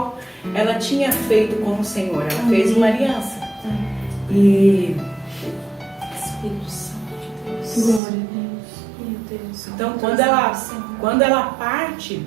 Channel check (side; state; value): left; drops out; at 8.0 s